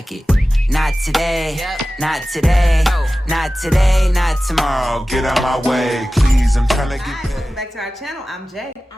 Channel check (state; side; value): normal; both; correlation 0.96